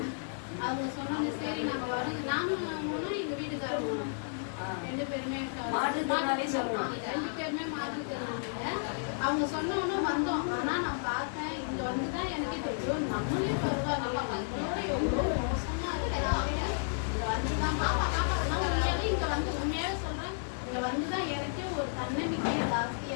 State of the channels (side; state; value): right; silent; 56 dB below the other